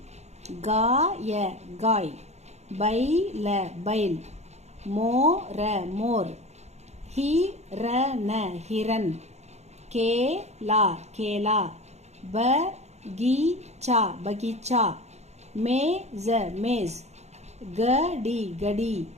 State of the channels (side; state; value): left; late; 0.32 ms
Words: காய காய், பைல பைல், மோர மோர், हिरन हिरन, केला केला, बगीचा बगीचा, मेज मेज, गडी गडी,